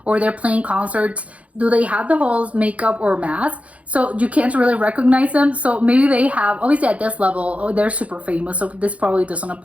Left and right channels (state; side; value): late; left; 0.065 ms